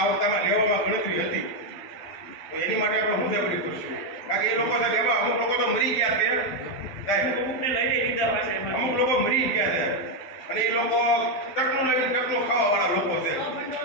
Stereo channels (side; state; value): right; late; 12 ms